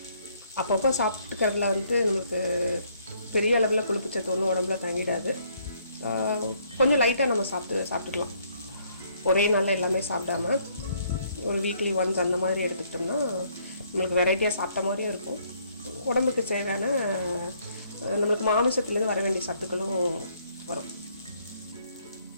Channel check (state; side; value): inverted; both; correlation -0.67